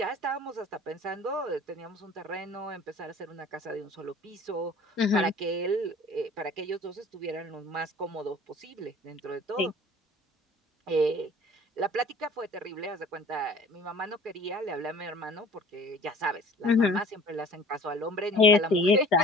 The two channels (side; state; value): both; normal; correlation 0.47